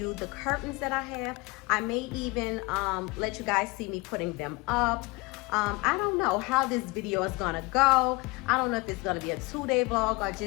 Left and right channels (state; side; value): quieter; right; 25.2 dB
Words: the curtains that I have. I may even let you guys see me putting them up. I don't know how this video is gonna go. I don't know if it's gonna be a 2-day vlog or